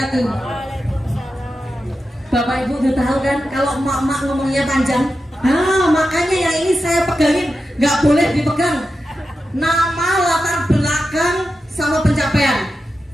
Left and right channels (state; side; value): normal; both; correlation 0.90